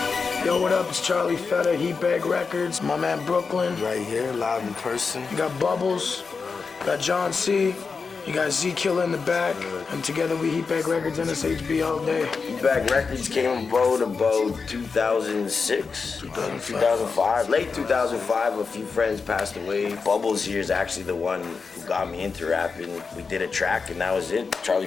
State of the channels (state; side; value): quieter; right; 4.9 dB